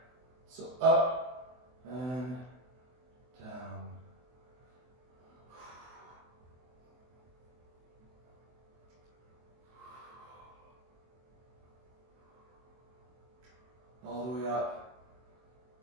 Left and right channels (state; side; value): late; left; 24 ms